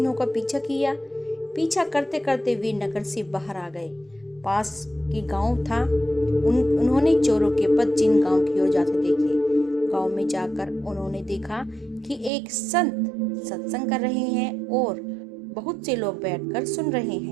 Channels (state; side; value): drops out; left; at 12.3 s